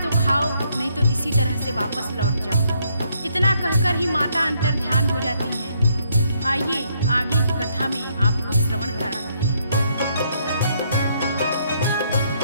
तो खाओ, नहीं तो इसी तरह से वापस लौट जाओ। इतना कहकर ही माता अंतर ध्यान हो जाती हैं। आइए आगे की कथा में आपको श्रवण कराते हैं।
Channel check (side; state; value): both; inverted; correlation -0.72